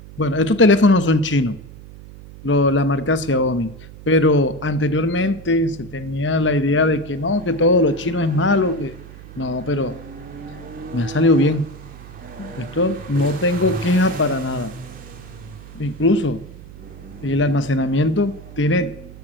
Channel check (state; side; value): noise; right; hum, 17 dB below the sound